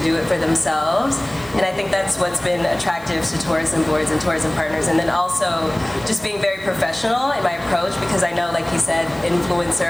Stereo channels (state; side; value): noise; right; hiss, 24 dB below the sound